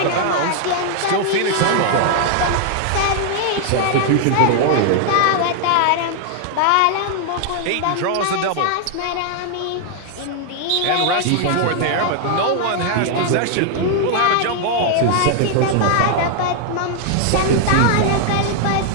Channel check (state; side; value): different; both; correlation 0.00